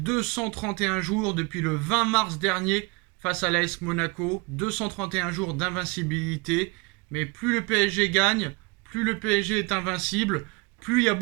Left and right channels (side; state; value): left; quieter; 27.2 dB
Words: jours, depuis le 20 mars dernier face à l'AS Monaco. 231 jours d'invincibilité. Mais plus le PSG gagne, plus le PSG est invincible, plus il y a